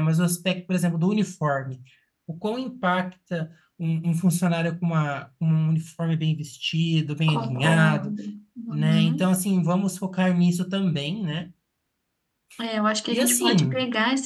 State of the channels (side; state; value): both; identical; correlation 1.00